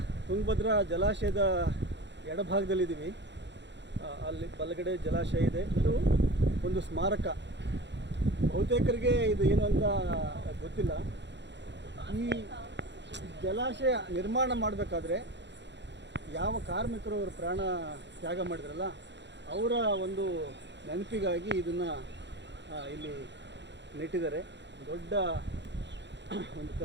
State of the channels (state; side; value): late; left; 0.52 ms